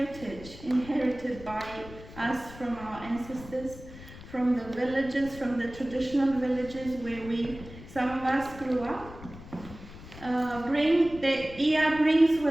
inherited by us from our ancestors, from the villages, from the traditional villages where some of us grew up. The Ia brings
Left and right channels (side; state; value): left; noise; rumble, 16 dB below the sound